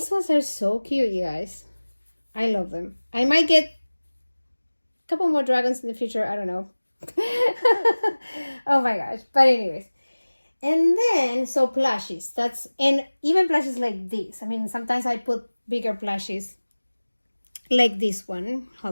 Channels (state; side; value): inverted; both; correlation -1.00